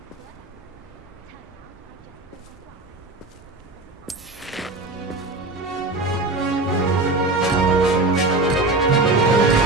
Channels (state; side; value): quieter; left; 3.1 dB